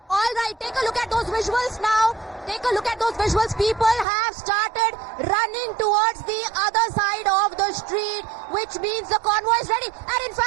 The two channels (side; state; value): left; drops out; at 4.0 s